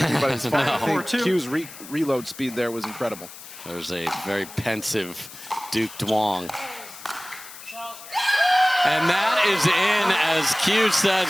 anybody's fault. No. I think 4-2. Q's reload speed there was incredible. there's a very pensive Duke Duong. And that is in as Q says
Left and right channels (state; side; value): noise; left; hiss, 16 dB below the sound